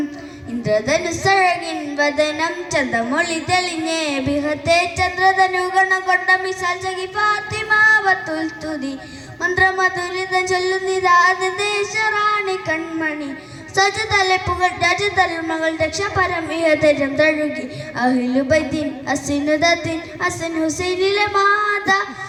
ഇന്ദ്രധനുസഴകിൻ വദനം ചന്തമൊളി തെളിഞ്ഞ് ബിഹത്തെ ചന്ദ്രധനുഗണ കൊണ്ട മിസാൽ സഖി ഫാത്തിമാവത്തുൽ തുതി മന്ത്രമധുരിതം ചൊല്ലുന്നിതാത് ദേശറാണി കൺമണി സജതലപ്പുകൾ രാജധർമ്മകൾ രക്ഷപരമിഹതരം തഴുകി അഹ്ലുബൈത്തിൻ അസിനുദത്തിൻ ഹസൻ ഹുസൈനിലെ മാത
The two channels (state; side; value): identical; both; correlation 1.00